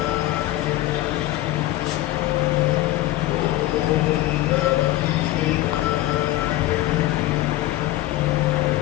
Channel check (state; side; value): quieter; right; 16.2 dB